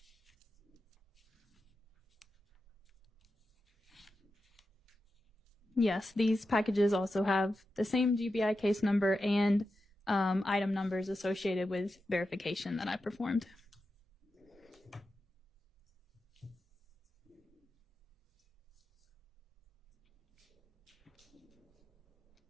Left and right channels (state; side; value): normal; both; correlation 0.90